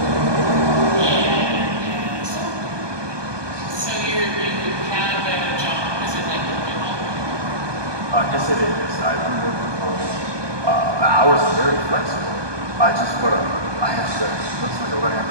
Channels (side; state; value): left; late; 1.2 ms